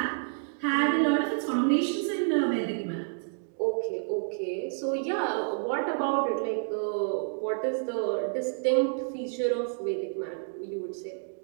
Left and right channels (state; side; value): silent; left; digital silence